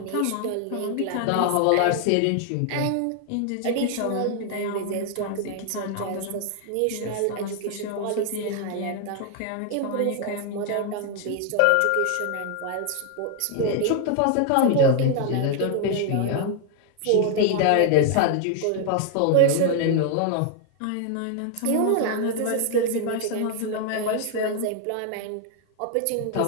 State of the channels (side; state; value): both; different; correlation 0.00